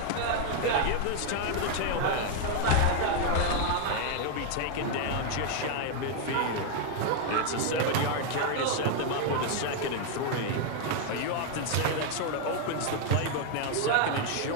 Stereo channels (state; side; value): different; both; correlation 0.00